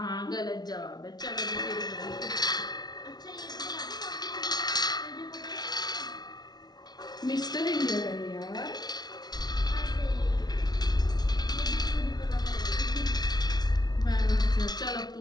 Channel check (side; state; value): right; late; 0.19 ms